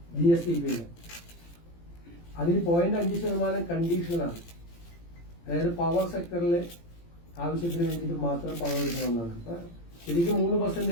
GSTP-യിൽ. അതിൽ 0.5% കണ്ടീഷനാണ്. അതായത് പവർ സെക്ടറിൽ ആവശ്യത്തിന് വേണ്ടിയിട്ട് മാത്രം പണം എടുക്കണമെന്നാണ്. ശരിക്കും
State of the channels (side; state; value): right; late; 18 ms